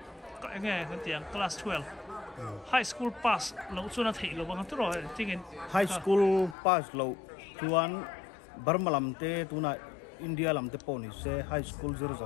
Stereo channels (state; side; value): drops out; right; at 6.6 s